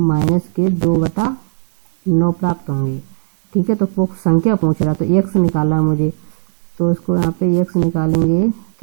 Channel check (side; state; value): left; silent; digital silence